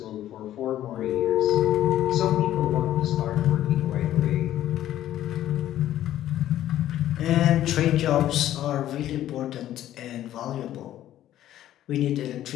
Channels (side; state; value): right; quieter; 12.7 dB